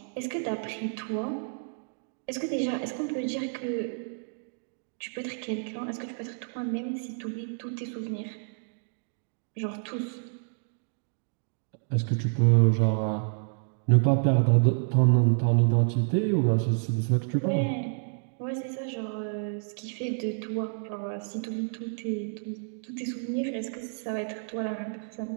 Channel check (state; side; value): silent; left; digital silence